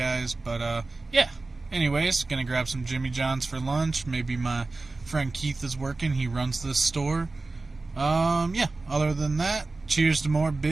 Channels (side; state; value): left; quieter; 3.4 dB